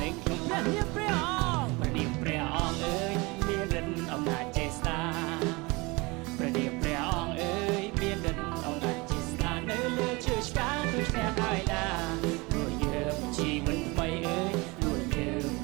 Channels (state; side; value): quieter; left; 25.2 dB